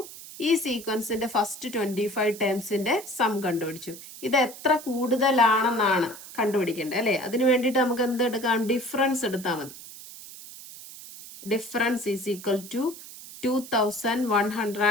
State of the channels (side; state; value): right; noise; hiss, 15 dB below the sound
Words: ഈ സീക്വൻസിന്റെ ഫസ്റ്റ് 25 ടേംസിന്റെ സം കണ്ടുപിടിച്ചു. ഇത് എത്ര കൂടുതലാണെന്നാണ് കണ്ടുപിടിക്കേണ്ടത് അല്ലേ? അതിന് വേണ്ടിയിട്ട് നമുക്ക് എന്ത് എടുക്കാം? ഡിഫറൻസ് എടുത്താൽ മതി. Difference is equal to